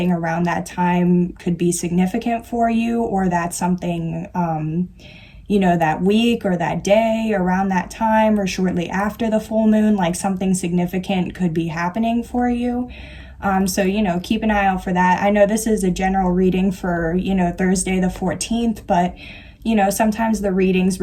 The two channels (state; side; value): identical; both; correlation 1.00